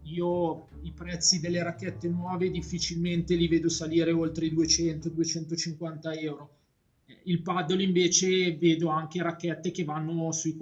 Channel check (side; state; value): both; identical; correlation 1.00